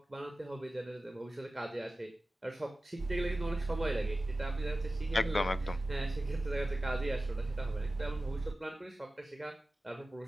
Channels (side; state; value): both; normal; correlation 0.95